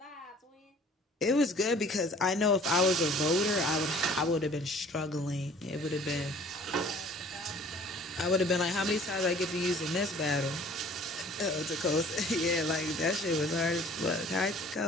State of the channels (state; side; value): normal; both; correlation 0.51